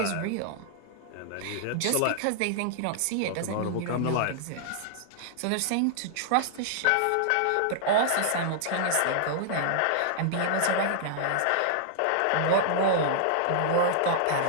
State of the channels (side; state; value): both; different; correlation -0.01